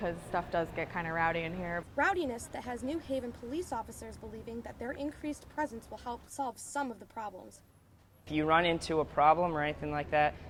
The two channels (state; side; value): identical; both; correlation 1.00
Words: stuff does get kind of rowdy in here. Rowdiness that has New Haven police officers believing that their increased presence will help solve some of the problems. If you run into a problem or anything like that,